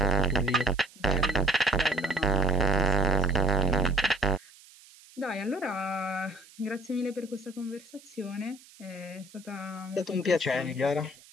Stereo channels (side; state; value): right; noise; hiss, 24 dB below the sound